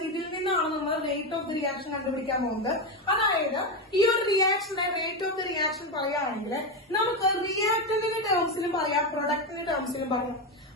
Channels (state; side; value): normal; both; correlation 0.12